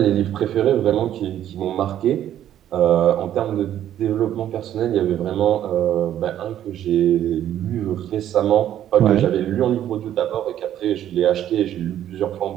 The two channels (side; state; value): left; quieter; 11.3 dB